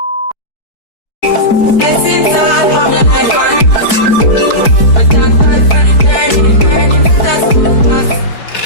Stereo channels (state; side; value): late; right; 4.6 ms